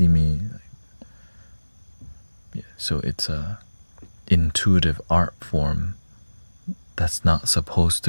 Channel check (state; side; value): inverted; both; correlation -1.00